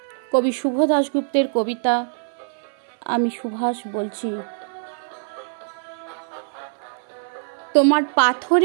কবি শুভ দাশগুপ্তের কবিতা আমি সুভাষ বলছি। তোমার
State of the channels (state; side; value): silent; left; 58 dB below the other